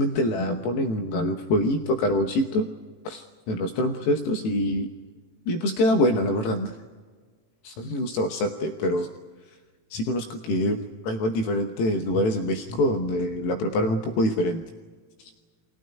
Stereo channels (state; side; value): late; right; 18 ms